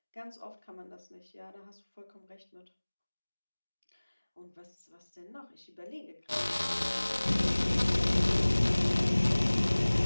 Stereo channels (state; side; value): inverted; both; correlation -1.00